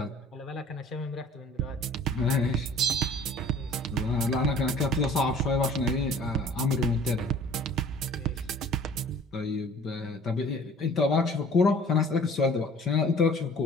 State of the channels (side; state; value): both; normal; correlation 0.50